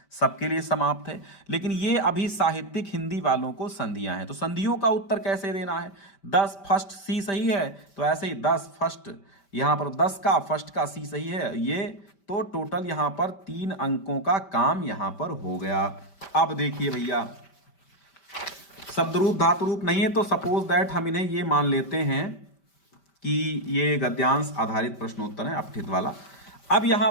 सबके लिए समाप्त है, लेकिन ये अभी साहित्यिक हिंदी वालों को संधियां हैं। तो संधियों का उत्तर कैसे देना है? 10 फर्स्ट सी सही है, तो ऐसे ही 10 फर्स्ट, यहां पर 10 का फर्स्ट का सी सही है ये, तो टोटल यहां पर 3 अंकों का काम यहां पर हो गया। अब देखिए भैया, शब्द रूप धातु रूप नहीं है, तो सपोज दैट हम इन्हें ये मान लेते हैं कि ये गद्यांश आधारित प्रश्नोत्तर है, अपठित वाला। अब यहां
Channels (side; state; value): right; late; 5.1 ms